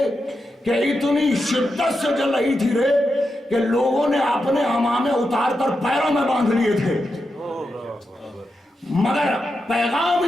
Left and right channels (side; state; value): both; normal; correlation 0.87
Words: کہ اتنی شدت سے چل رہی تھی ریت کہ لوگوں نے اپنے عمامے اتار کر پیروں میں باندھ لیے تھے. مگر پیغام